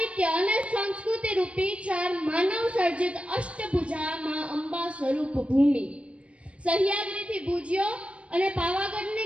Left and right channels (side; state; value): left; late; 0.061 ms